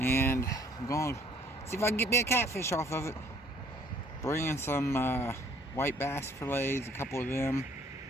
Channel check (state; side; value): normal; both; correlation 0.60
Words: I'm going to see if I can get me a catfish off of it. Bringing some white bass fillets, a couple of them,